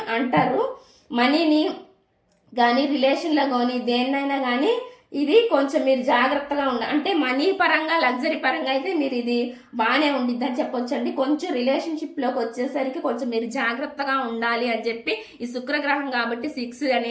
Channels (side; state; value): both; identical; correlation 1.00